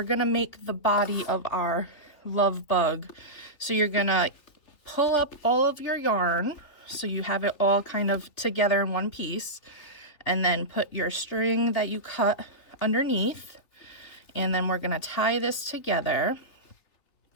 gonna make the body of our love bug. So you're gonna pull up all of your yarn so you have it all kind of together in one piece, and then put your string that you cut underneath, and then we're gonna tie this together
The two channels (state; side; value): late; right; 3.4 ms